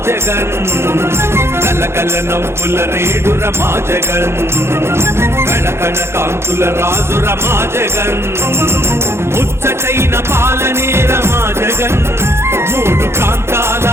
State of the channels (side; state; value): left; late; 0.12 ms